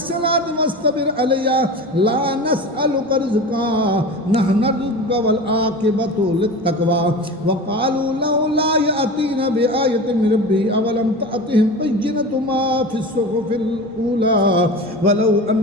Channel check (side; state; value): both; normal; correlation 0.32